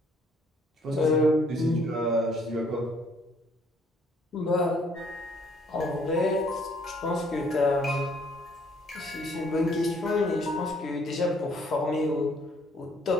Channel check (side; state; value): both; normal; correlation 0.64